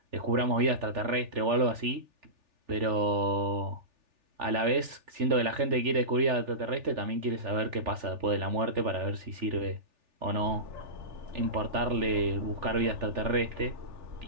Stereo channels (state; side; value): late; left; 3.4 ms